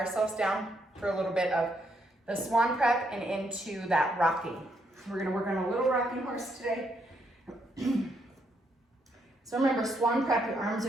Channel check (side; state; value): both; normal; correlation 0.76